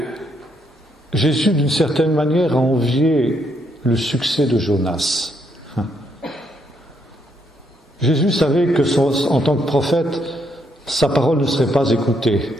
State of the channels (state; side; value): normal; both; correlation 0.74